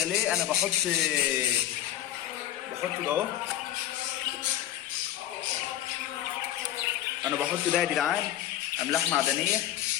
ليه، انا بحط ده اهو. انا بحط ده يا جدعان املاح معدنيه،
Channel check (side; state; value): right; quieter; 12.5 dB